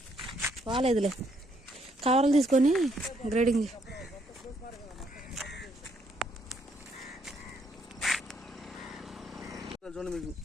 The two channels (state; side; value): normal; both; correlation 0.71